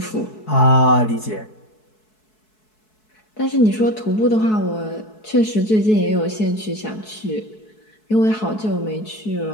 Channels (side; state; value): right; late; 4.7 ms